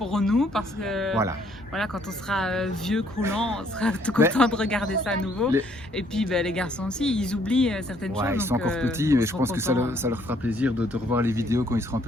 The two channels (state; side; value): normal; both; correlation 0.65